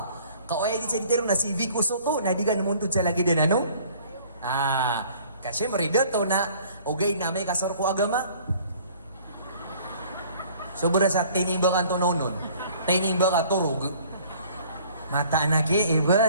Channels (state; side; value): inverted; both; correlation -0.53